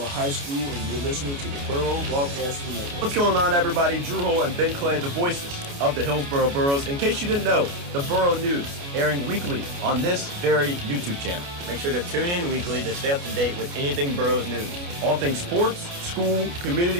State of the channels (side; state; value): left; late; 29 ms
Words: High School, and you're listening to the Burro Broadcast Network. What's going on, everybody? Drew Hull and Ben Clay, the voices of the Hillsboro Burros. In case you didn't know, the Burro News airing weekly on this very YouTube channel. Make sure to tune in weekly to stay up to date with anything Burros news. All things sports, school,